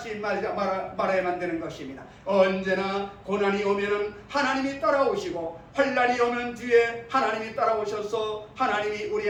말아야만 되는 것입니다. 언제나 고난이 오면은 하나님이 따라오시고 환난이 오면 뒤에 하나님이 따라오셔서 하나님이 우리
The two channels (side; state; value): both; identical; correlation 1.00